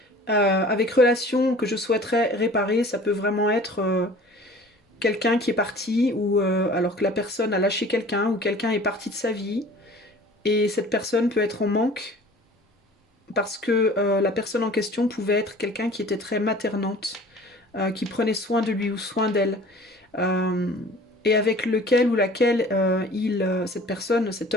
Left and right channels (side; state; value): both; normal; correlation 0.46